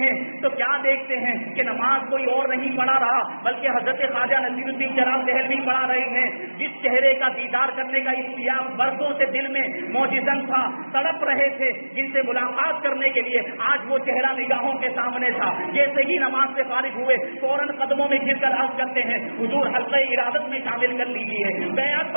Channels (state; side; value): inverted; both; correlation -1.00